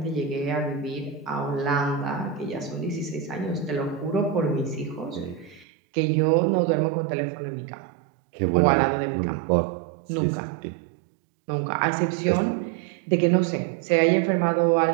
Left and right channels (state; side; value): drops out; left; at 5.7 s